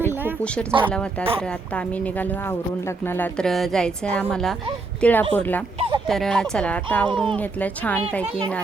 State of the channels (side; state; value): left; quieter; 3.7 dB